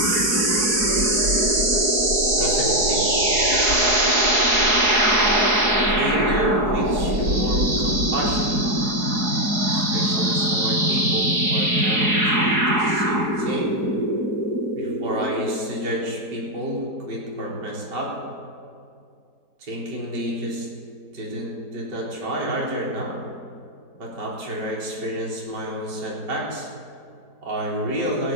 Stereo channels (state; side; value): late; left; 4.7 ms